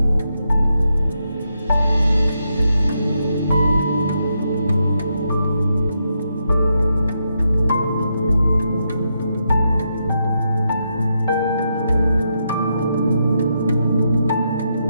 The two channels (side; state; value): both; inverted; correlation -0.82